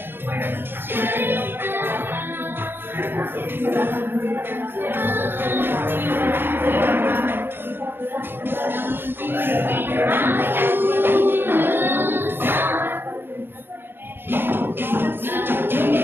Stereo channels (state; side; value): late; left; 0.10 ms